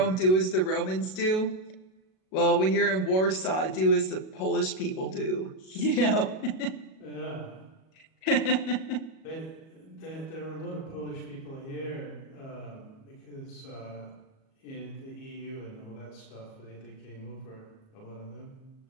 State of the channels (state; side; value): late; right; 37 ms